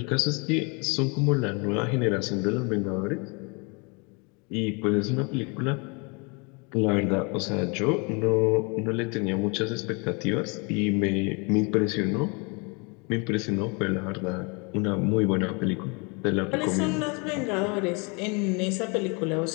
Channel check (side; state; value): right; quieter; 31.4 dB